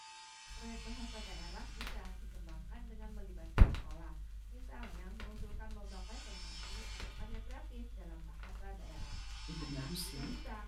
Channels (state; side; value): identical; both; correlation 1.00